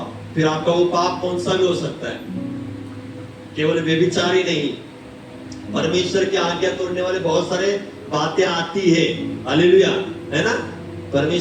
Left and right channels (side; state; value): both; identical; correlation 1.00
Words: फिर आपका वो पाप कौन सा भी हो सकता है। केवल व्यभिचार ही नहीं, परमेश्वर की आज्ञा तोड़ने वाले बहुत सारे बातें आती है। हालेलुया, है ना।